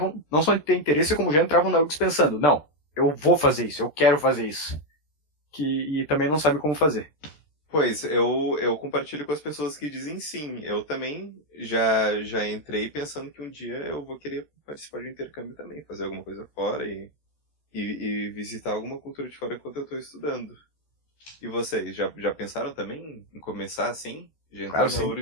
não só de ter interesse, como já entravam na URGS pensando, não, eu vou fazer isso, eu quero fazer isso. E também não sabe como fazer. Pois, eu compartilho com as pessoas que dizem sim. Eu também já entrei pensando que um dia eu vou querer participar de um intercâmbio também, fazer alguma coisa fora e visitar alguma cultura de fora enquanto eu estou estudando. E vocês, já pensaram também em começar assim? Já entraram na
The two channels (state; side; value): late; right; 13 ms